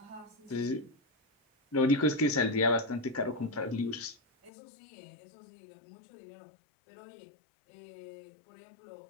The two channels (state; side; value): drops out; right; at 4.5 s